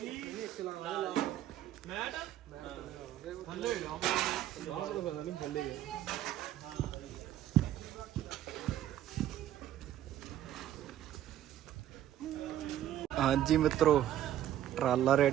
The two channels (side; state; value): left; quieter; 12.2 dB